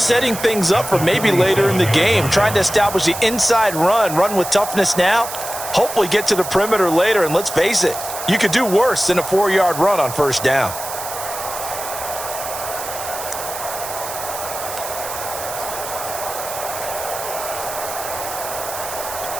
things up for maybe later in the game, trying to establish the inside run with toughness now, hopefully get to the perimeter later, and let's face it, you could do worse than a 4-yard run on first down.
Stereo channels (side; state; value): right; noise; hiss, 8 dB below the sound